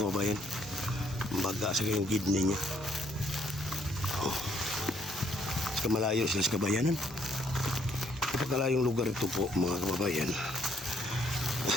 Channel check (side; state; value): both; normal; correlation 0.68